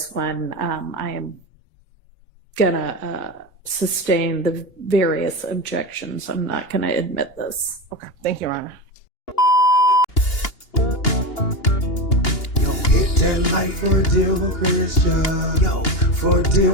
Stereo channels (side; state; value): right; late; 2.8 ms